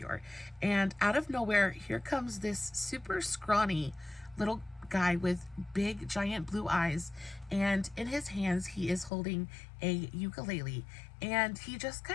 And out of nowhere, here comes this super scrawny little guy with big giant blue eyes, and in his hands he is holding a ukulele, and he just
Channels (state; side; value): drops out; right; at 9.1 s